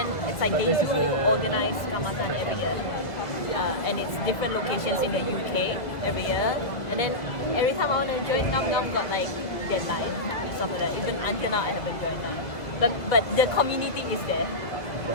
it's like they do organize Kaamatan every year. And it's different locations in the UK every year. And then every time I want to join, Nam got like deadline and stuff like that. Even until now I haven't joined that. But the community is there.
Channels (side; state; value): right; late; 2.0 ms